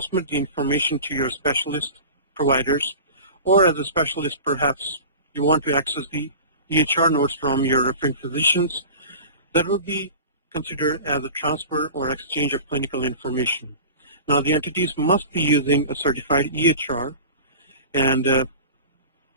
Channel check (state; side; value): inverted; both; correlation -0.36